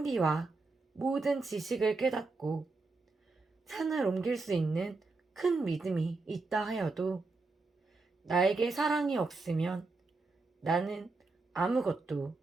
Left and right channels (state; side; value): quieter; left; 3.7 dB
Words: 모든 지식을 깨닫고 산을 옮길 수 있는 큰 믿음이 있다 하여도 나에게 사랑이 없으면 나는 아무것도